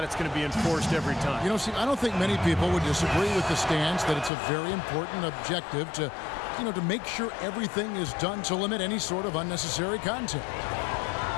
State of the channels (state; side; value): drops out; right; at 4.3 s